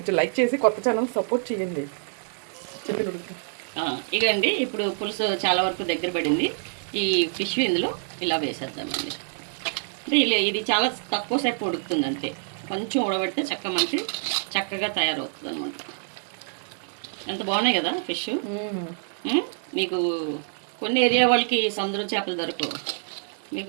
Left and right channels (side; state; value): left; silent; digital silence